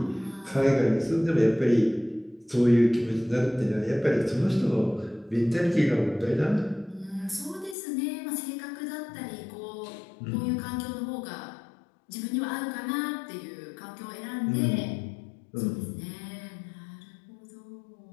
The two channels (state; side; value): drops out; right; at 7.8 s